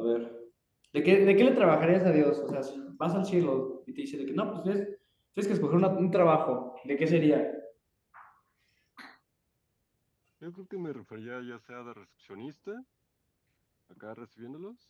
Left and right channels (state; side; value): identical; both; correlation 1.00